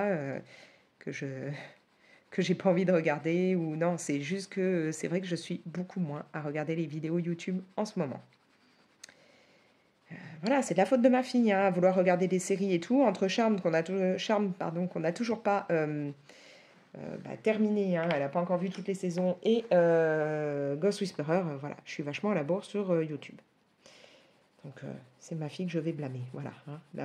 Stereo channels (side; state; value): both; identical; correlation 1.00